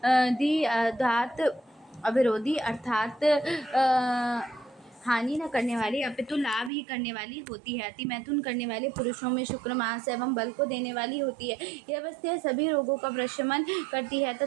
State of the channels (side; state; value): left; drops out; at 6.7 s